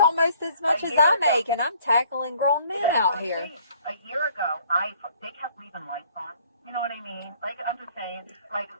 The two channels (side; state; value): both; inverted; correlation -0.59